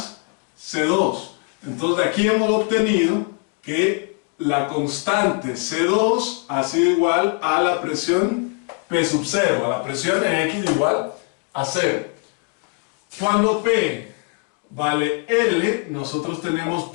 C2. Entonces de aquí hemos obtenido que la constante C2 ha sido igual a la presión P sub 0, a la presión en X igual a 0. Cuando P vale L, nosotros tenemos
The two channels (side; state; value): right; quieter; 36.2 dB